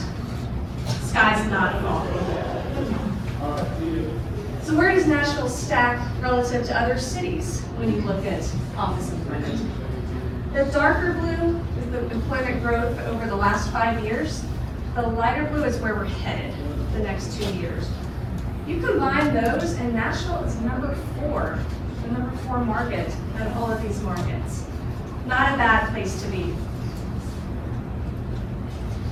sky's not falling. So where does Nashville stack relative to other cities when you look at office employment? The darker blue is the employment growth over the last 5 years. The lighter blue is where we're headed the next 2 years. You combine those, and Nashville is #4, the #4 market out of all of these markets. Not a bad place to be.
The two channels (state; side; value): identical; both; correlation 1.00